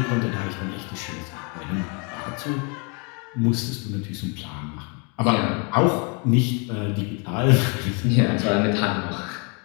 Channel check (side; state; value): right; quieter; 34.3 dB